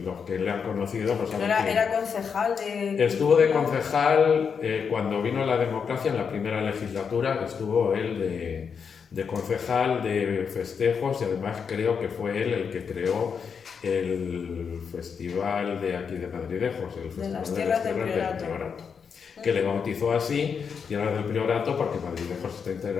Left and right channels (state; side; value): quieter; right; 6.4 dB